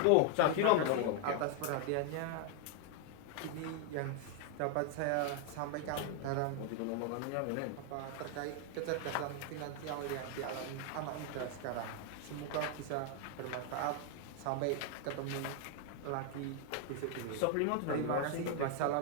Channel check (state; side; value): different; both; correlation 0.01